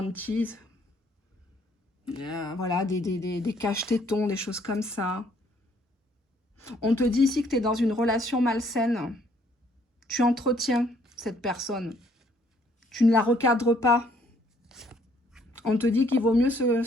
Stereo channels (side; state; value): both; normal; correlation 0.65